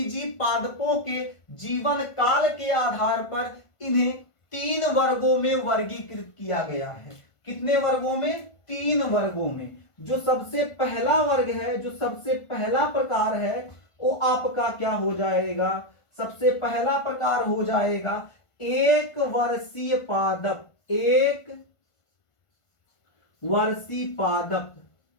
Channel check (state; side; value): late; right; 1.5 ms